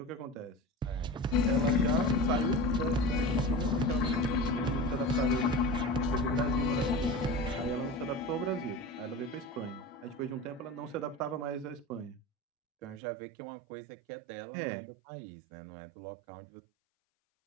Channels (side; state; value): left; drops out; at 13.0 s